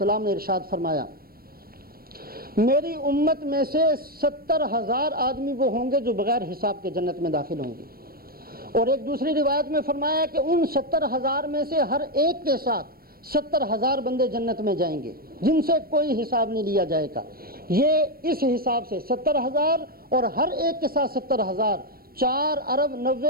نے ارشاد فرمایا میری امت میں سے 70,000 آدمی وہ ہوں گے جو بغیر حساب کے جنت میں داخل ہوں گے، اور ایک دوسری روایت میں فرمایا کہ ان 70,000 میں سے ہر ایک کے ساتھ 70,000 بندے جنت میں جائیں گے جن سے کوئی حساب نہیں لیا جائے گا۔ یہ اس حساب سے 70,000 اور ہر ایک کے ساتھ 70,000، 4 ارب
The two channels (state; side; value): late; left; 0.44 ms